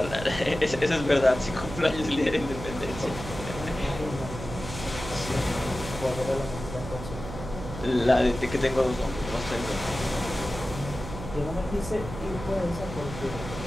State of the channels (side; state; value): right; noise; hum, 9 dB below the sound